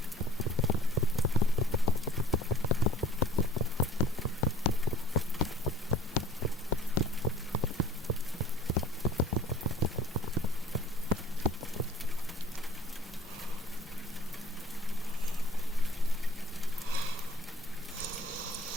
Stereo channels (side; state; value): both; normal; correlation 0.52